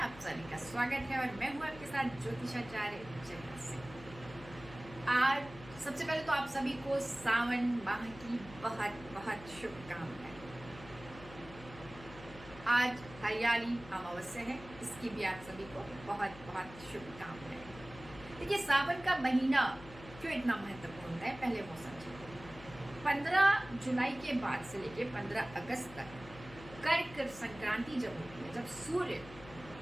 सभी का स्वागत है और मैं हूं आपके साथ ज्योतिषाचार्य जया सिंह। आज सबसे पहले तो आप सभी को सावन माह की बहुत बहुत शुभकामनाएं। आज हरियाली अमावस्या है, इसकी भी आप सभी को बहुत बहुत शुभकामनाएं। देखिए, सावन का महीना क्यों इतना महत्वपूर्ण है, पहले वो समझिए। 15 जुलाई के बाद से लेके 15 अगस्त तक कर्क संक्रांति जब होती है, जब सूर्य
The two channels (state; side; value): noise; left; hum, 17 dB below the sound